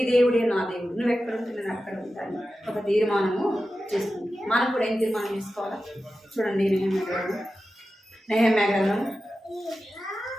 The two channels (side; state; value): both; normal; correlation 0.93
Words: దేవుడే నా దేవుడు, నువ్వు ఎక్కడ ఉంటే నేను అక్కడ ఉంటాను ఒక తీర్మానము చేస్తుంది. మనం కూడా ఏం తీర్మానం చేసుకోవాలా చూడండి. నెహెమ్యా గ్రంథం